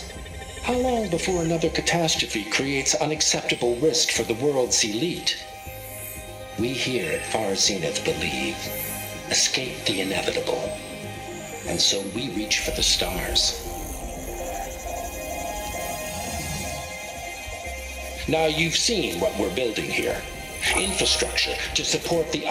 How long before another catastrophe creates unacceptable risk for the world's elite? We here at Far Zenith believe, escape the inevitable. And so we reach for the stars. Now you've seen what we're building here. Infrastructure to support the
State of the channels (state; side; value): identical; both; correlation 1.00